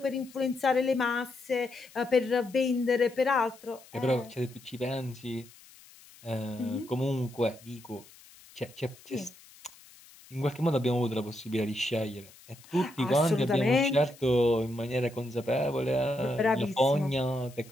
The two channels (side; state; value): left; noise; hiss, 23 dB below the sound